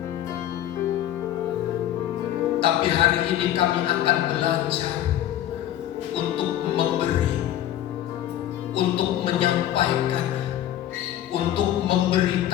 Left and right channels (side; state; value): right; quieter; 12.2 dB